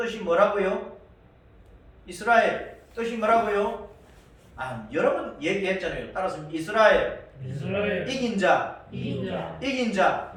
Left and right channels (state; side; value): identical; both; correlation 1.00